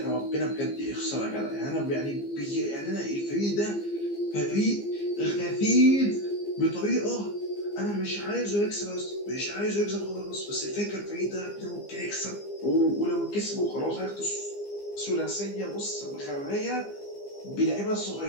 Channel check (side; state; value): right; late; 15 ms